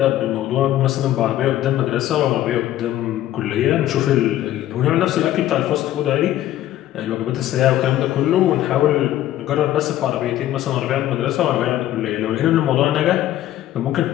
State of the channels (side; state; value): right; quieter; 13.3 dB